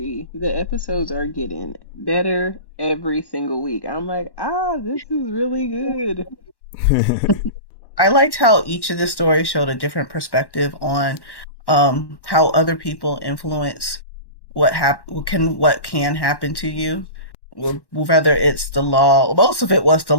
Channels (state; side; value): late; right; 1.1 ms